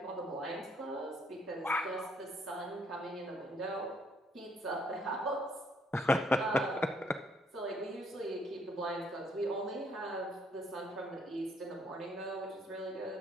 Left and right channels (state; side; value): normal; both; correlation 0.68